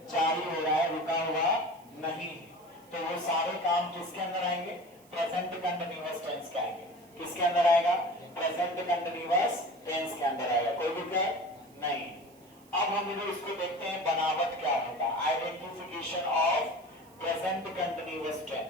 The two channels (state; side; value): noise; right; hiss, 28 dB below the sound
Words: जारी हो रहा है, रुका हुआ नहीं। तो वो सारे काम किसके अंदर आएंगे? प्रेजेंट कंटिन्यूअस टेंस के आएंगे। किसके अंदर आएगा? प्रेजेंट कंटिन्यूअस टेंस के अंदर आएगा। कोई दिक्कत नहीं। अब हम लोग इसको देखते हैं बनावट क्या होगा। Identification of present continuous